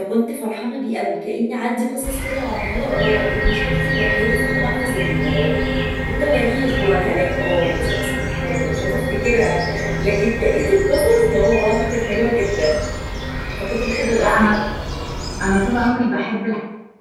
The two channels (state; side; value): identical; both; correlation 1.00